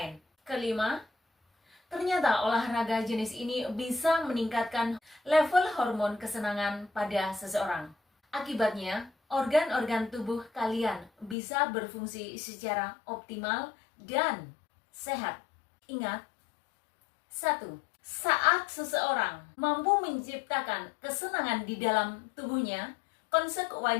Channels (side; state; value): right; drops out; at 11.4 s